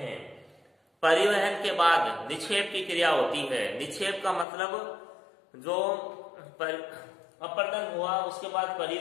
परिवहन के बाद निक्षेप की क्रिया होती है। निक्षेप का मतलब जो अपर्दन हुआ उसके बाद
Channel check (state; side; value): drops out; right; at 4.5 s